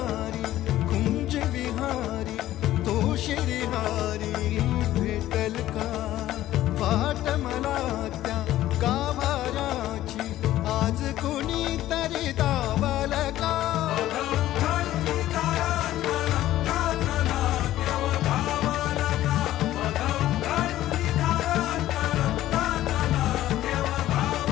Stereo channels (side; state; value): right; quieter; 14.1 dB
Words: कुंज विहारी तो शिरिहारी भेटल का वाट मला त्या गाभाऱ्याची आज कोणी तरी